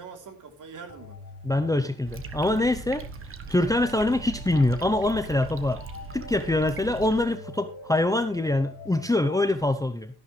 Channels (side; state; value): both; normal; correlation 0.78